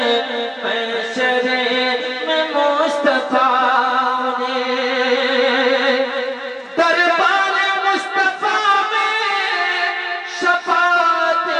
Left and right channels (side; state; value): both; identical; correlation 1.00